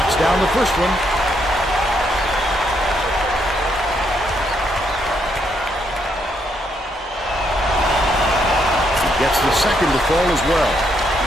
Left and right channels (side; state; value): both; normal; correlation 0.75